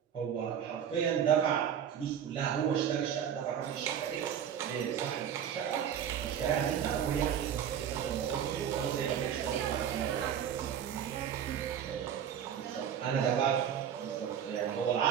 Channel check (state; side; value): quieter; left; 8.9 dB